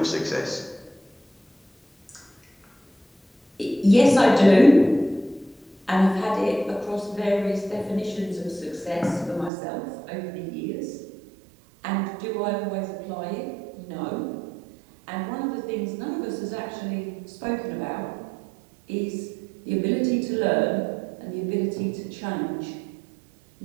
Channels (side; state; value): left; drops out; at 9.5 s